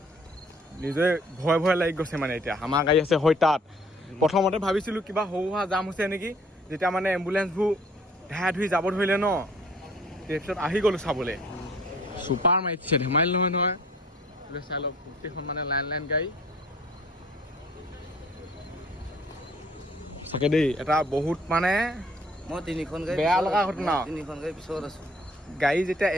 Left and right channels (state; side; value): normal; both; correlation 0.56